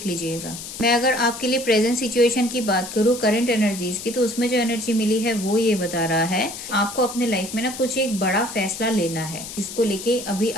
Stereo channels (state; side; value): noise; left; hiss, 10 dB below the sound